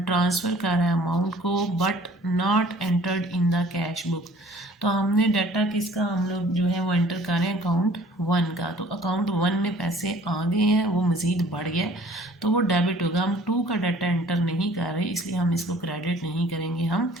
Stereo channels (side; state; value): both; normal; correlation 0.53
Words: ट्रांसफ़र कर रहा है अमाउंट को but not entered in the cash cash book. तो हमने डाटा किसका हम लोग जो है वो एंटर कर रहे हैं अकाउंट 1 का। तो अकाउंट 1 में पैसे आ गए हैं, वो मज़ीद बढ़ गया तो वो डेबिट होगा। हम 2 का डाटा एंटर नहीं कर रहे इसलिए हम इसको क्रेडिट नहीं करेंगे, हम